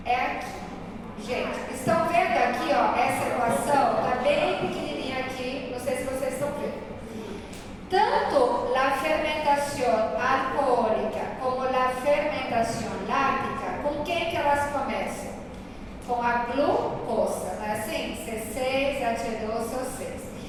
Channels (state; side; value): identical; both; correlation 1.00